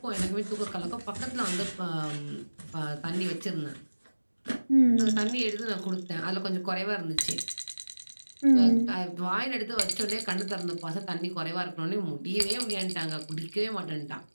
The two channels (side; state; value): both; inverted; correlation -1.00